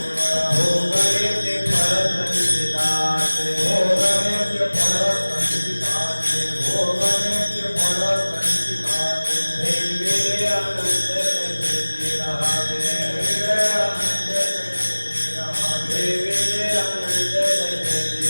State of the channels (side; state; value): both; inverted; correlation -1.00